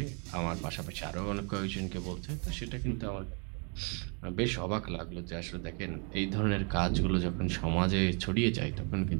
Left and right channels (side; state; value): left; quieter; 37.4 dB